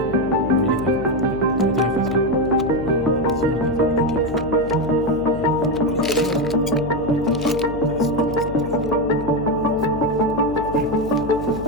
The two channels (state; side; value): noise; left; hum, 11 dB below the sound